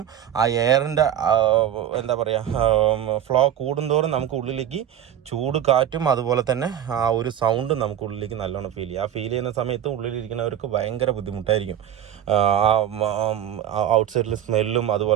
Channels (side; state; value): left; quieter; 10.4 dB